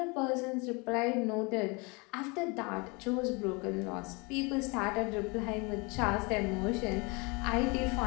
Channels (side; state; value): right; quieter; 28.8 dB